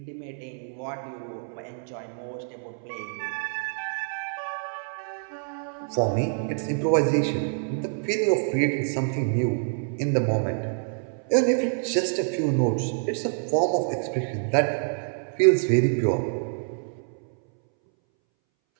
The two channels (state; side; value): silent; left; 60 dB below the other